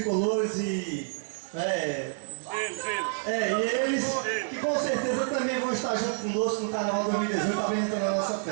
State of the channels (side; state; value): left; silent; digital silence